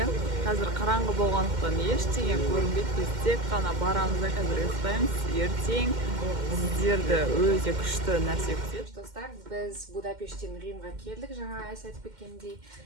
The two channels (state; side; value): late; left; 2.1 ms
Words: қазір қараңғы болғандықтан ештеңе көрінбейді. Біз тек қана барамыз да қазір ұйықтаймыз. Ертең сіздерді өте күшті нәрсе күтеді. Достар, біз Будапешттен Римға келдік. Жаңа Ася айтып кеткендей.